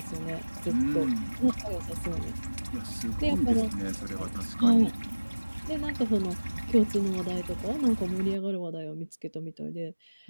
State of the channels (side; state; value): both; inverted; correlation -1.00